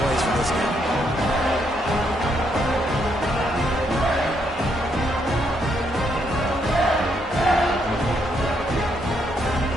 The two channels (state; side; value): normal; both; correlation 0.75